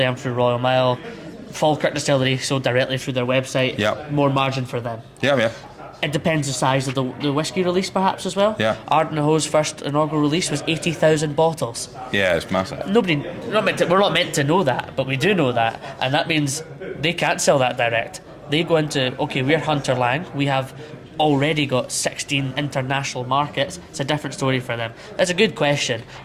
and through Royal Mile. Falkirk distillery sold directly through their website. More margin for them. It depends the size of the whiskey release, perhaps, as well. Ardnahoe's first inaugural release was 80,000 bottles. Yeah, it's massive. We're not meant to know that, but we do know that, and that means they can't sell that direct. They go into, we're Hunter Lang, we have already got 16 international markets. It's a different story for them. That's a good question,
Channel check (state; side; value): identical; both; correlation 1.00